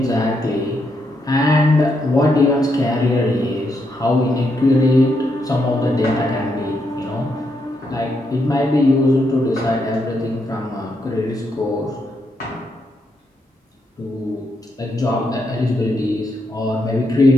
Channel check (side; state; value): both; normal; correlation 0.80